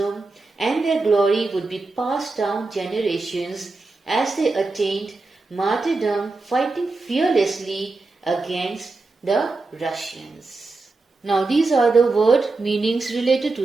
and their glory would be passed down generations as they attained martyrdom, fighting fearlessly against the Russians. Now these are the word meanings related to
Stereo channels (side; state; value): left; quieter; 3.5 dB